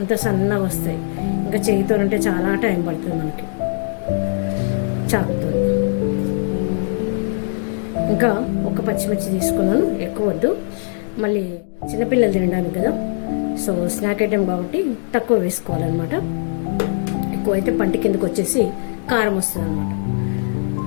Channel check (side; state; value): right; silent; digital silence